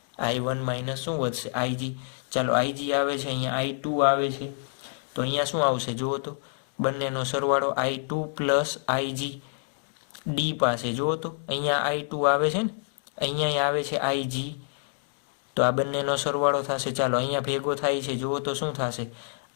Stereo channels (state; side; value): silent; right; digital silence